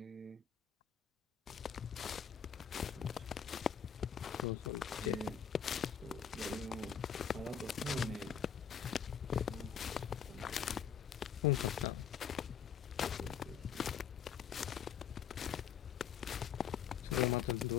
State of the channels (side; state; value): right; quieter; 7.9 dB